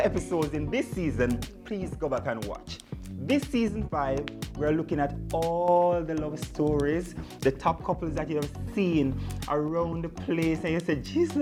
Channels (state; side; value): identical; both; correlation 1.00